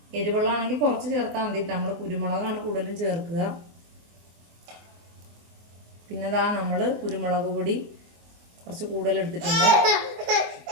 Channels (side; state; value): left; late; 24 ms